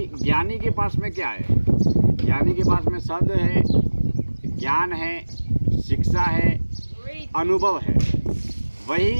ज्ञानी के पास में क्या है। ज्ञानी के पास में शब्द है, ज्ञान है, शिक्षा है, अनुभव है।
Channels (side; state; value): both; inverted; correlation -1.00